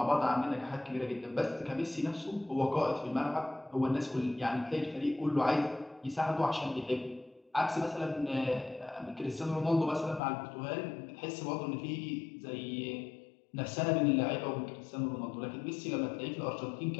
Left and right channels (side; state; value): right; drops out; at 10.2 s